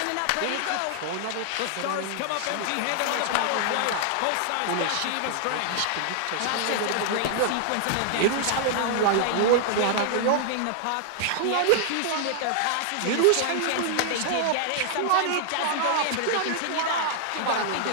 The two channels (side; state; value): both; different; correlation -0.01